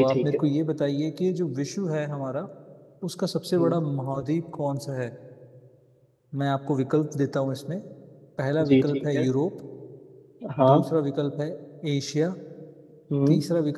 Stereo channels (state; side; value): identical; both; correlation 1.00